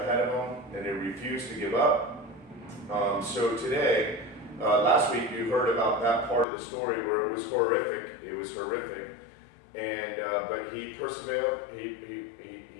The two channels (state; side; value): drops out; right; at 6.5 s